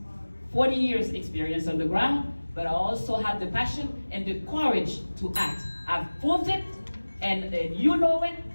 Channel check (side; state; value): both; inverted; correlation -1.00